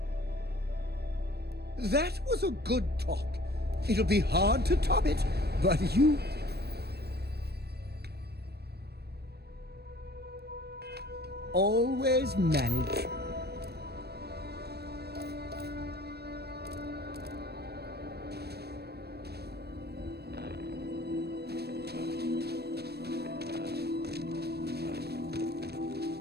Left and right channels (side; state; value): left; late; 0.47 ms